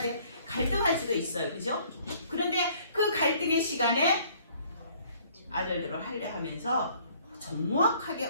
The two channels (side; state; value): both; inverted; correlation -0.59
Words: 돼. 갈등할 수도 있어요. 그죠? 그런데 그 갈등의 시간에 아들들을 할례 하면서 정확하게